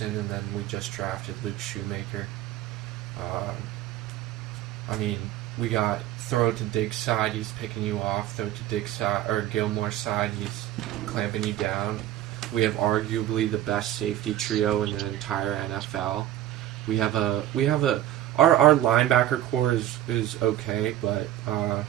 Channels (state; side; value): quieter; left; 13.0 dB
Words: and then we just drafted Luke Shoemaker. I mean, we got throw to Diggs' side, he's picking you off. Throw to Diggs' side or Gilmore's side, he's clamping you down. We have arguably the best safety trio in the entire NFL. We have our linebacker core is okay, but